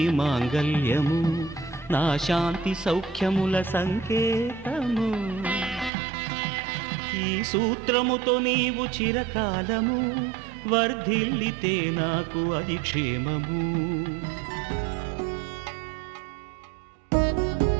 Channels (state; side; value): drops out; left; at 5.9 s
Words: మాంగల్యము నా శాంతి సౌఖ్యముల సంకేతము ఈ సూత్రముతో నీవు చిరకాలము వర్ధిల్లితే నాకు అది క్షేమము